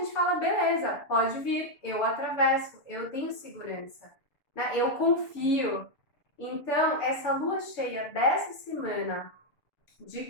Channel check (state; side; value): late; right; 6.9 ms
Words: fala, beleza, pode vir, eu atravesso, eu tenho segurança, né? Eu confio. Então, essa lua cheia dessa semana,